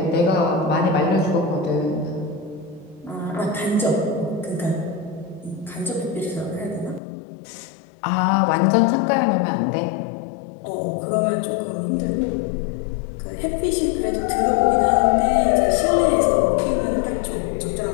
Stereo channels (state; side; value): drops out; right; at 7.0 s